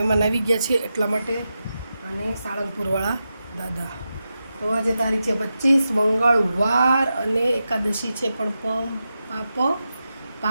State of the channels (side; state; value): both; inverted; correlation -0.90